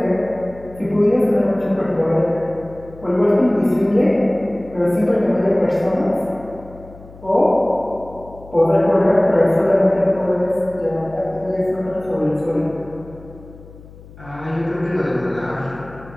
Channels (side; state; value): left; noise; hum, 20 dB below the sound